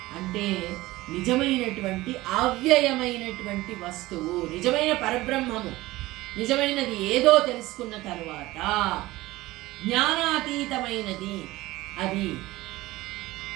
అంటే నిజమైనటువంటి అవ్యయమైనటువంటి వస్తువు, నిజమైన పరబ్రహ్మము, నిజమైనది ఏదో తెలుసుకున్న తరువాత జ్ఞానాతీతమైనది అది.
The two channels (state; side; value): quieter; left; 18.5 dB